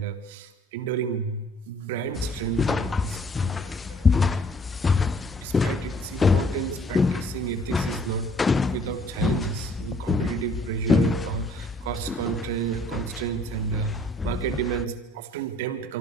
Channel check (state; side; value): normal; both; correlation 0.59